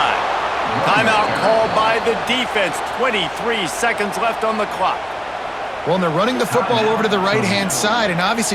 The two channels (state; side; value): identical; both; correlation 1.00